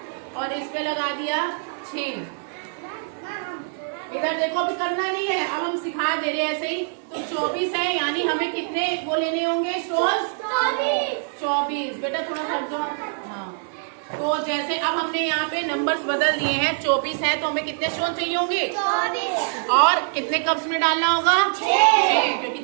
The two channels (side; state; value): left; silent; 63 dB below the other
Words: और इसमें लगा दिया 6। इधर देखो, अभी करना नहीं है, अब हम सिखा दे रहे हैं ऐसे ही। तो 24 है, यानी हमें कितने वो लेने होंगे स्टोन्स? 24। बेटा थोड़ा हट जाओ। हाँ, तो जैसे अब हमने यहाँ पे नंबर्स बदल दिए हैं। 24 है तो हमें कितने स्टोन चाहिए होंगे? 24। और कितने कप्स में डालना होगा? 6, क्योंकि